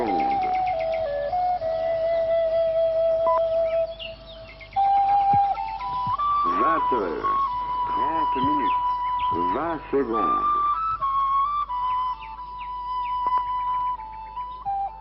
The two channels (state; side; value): identical; both; correlation 1.00